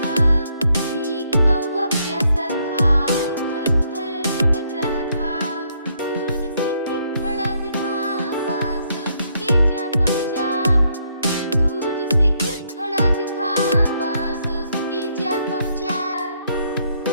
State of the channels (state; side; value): inverted; both; correlation -0.72